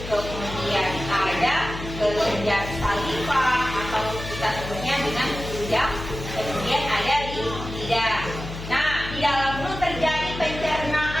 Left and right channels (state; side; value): noise; left; hum, 9 dB below the sound